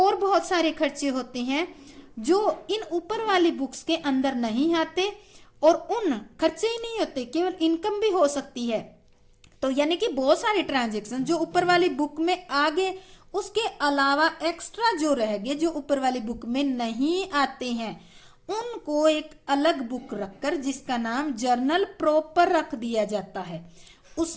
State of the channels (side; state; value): both; identical; correlation 1.00